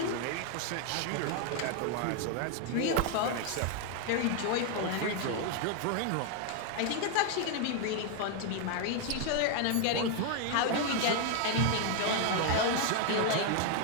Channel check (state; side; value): different; both; correlation 0.00